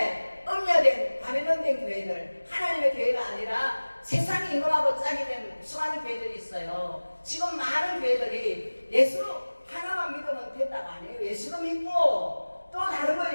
음녀된 가면된 교회들 하나님의 교회가 아니라 세상이 임금하고 짝이 된 수많은 교회들이 있어요. 지금 많은 교회들이 예수 하나만 믿으면 된다고 안 해요. 예수도 믿고 또 다른 거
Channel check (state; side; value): inverted; both; correlation -1.00